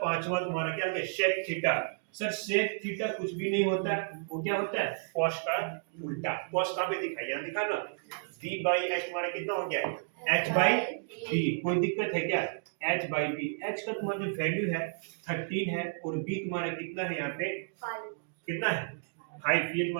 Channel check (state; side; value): silent; left; digital silence